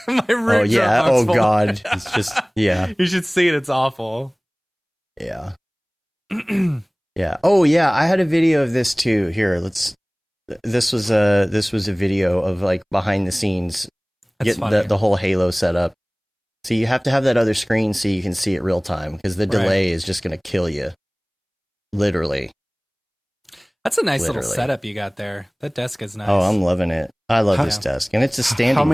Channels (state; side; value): identical; both; correlation 1.00